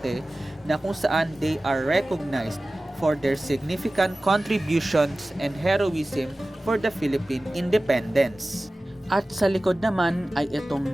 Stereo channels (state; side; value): normal; both; correlation 0.97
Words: na kung saan they are recognized for their significant contributions and heroism for the Philippine independence. At sa likod naman ay